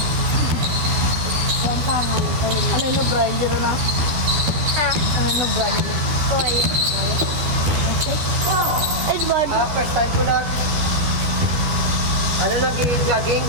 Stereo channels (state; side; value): late; left; 13 ms